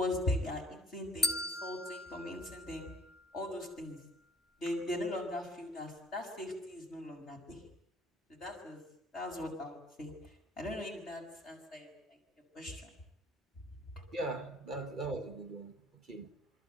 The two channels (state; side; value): normal; both; correlation 0.56